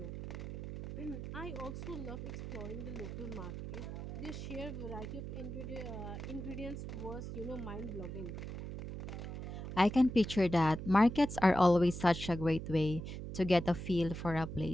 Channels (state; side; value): noise; right; hum, 7 dB below the sound